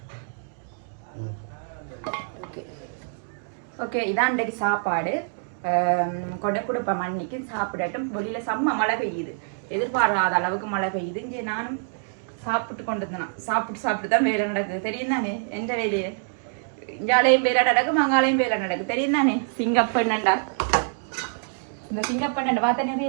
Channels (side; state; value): left; silent; digital silence